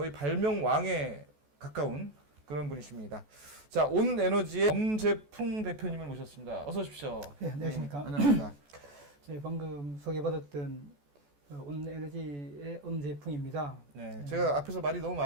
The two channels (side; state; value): left; late; 14 ms